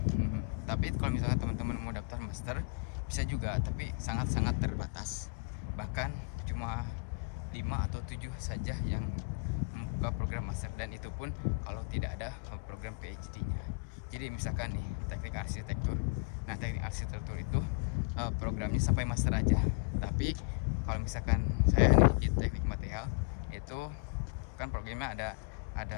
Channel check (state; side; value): quieter; right; 35.1 dB